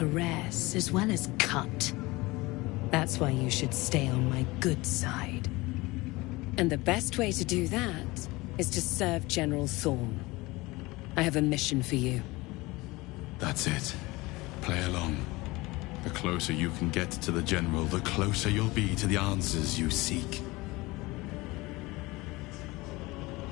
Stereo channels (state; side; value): quieter; right; 21.9 dB